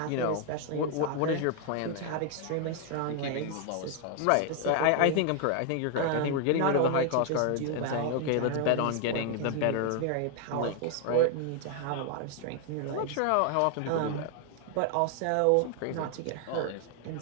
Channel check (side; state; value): both; different; correlation 0.00